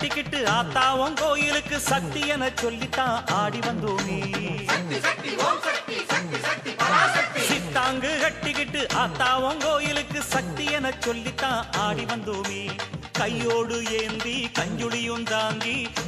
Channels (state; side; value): identical; both; correlation 1.00